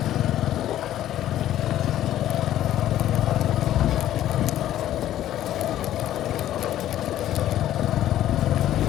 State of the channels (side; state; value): right; quieter; 12.5 dB